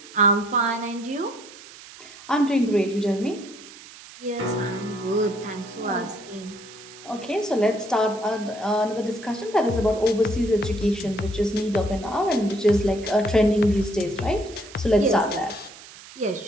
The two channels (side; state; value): right; noise; hiss, 18 dB below the sound